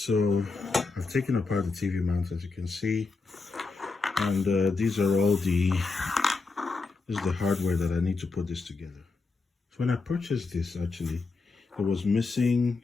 I've taken apart the TV mount, as you can see, and these are all this is the hardware that I need to put this together. So when I purchased this, actually, it was missing.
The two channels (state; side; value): quieter; right; 4.0 dB